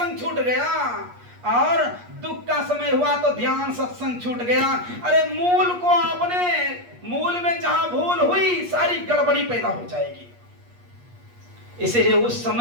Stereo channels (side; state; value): left; late; 8.4 ms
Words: छूट गया, और दुख का समय हुआ तो ध्यान सत्संग छूट गया। अरे मूल को आपने, मूल में जहां भूल हुई सारी गड़बड़ी पैदा हो जाएगी। इसलिए उस